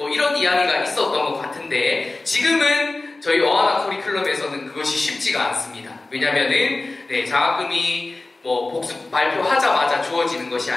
이런 이야기가 있었던 것 같은데, 지금은 저희 어하나 커리큘럼에서는 그것이 쉽지가 않습니다. 왜냐면은 장학금이 복습 발표하자마자 주어지는 것이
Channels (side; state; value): right; quieter; 3.2 dB